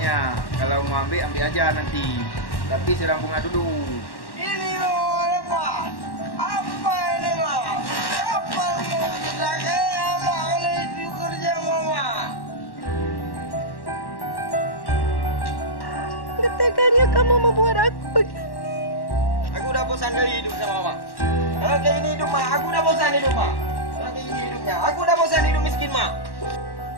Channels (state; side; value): late; right; 1.1 ms